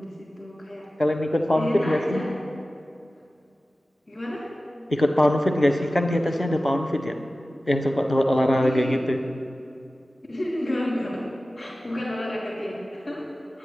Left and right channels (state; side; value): normal; both; correlation 0.96